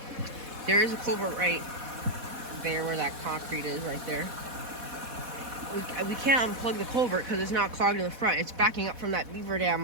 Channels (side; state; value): left; late; 4.1 ms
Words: is a culvert right there where that concrete is right there. We can't unplug the culvert because it's not clogged in the front. It's backing up from that beaver